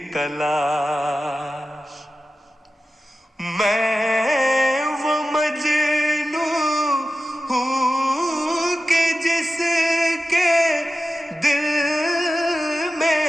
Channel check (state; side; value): normal; both; correlation 0.93